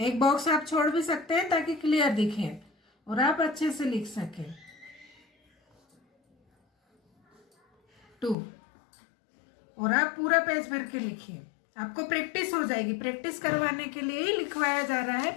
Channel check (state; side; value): drops out; right; at 8.3 s